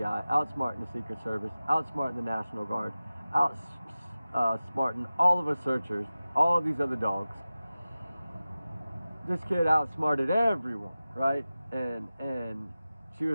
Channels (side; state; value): both; inverted; correlation -0.96